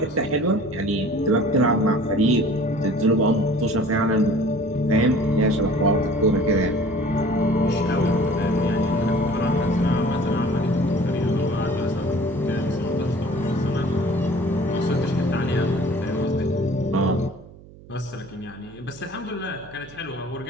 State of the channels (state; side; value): noise; right; hum, 21 dB below the sound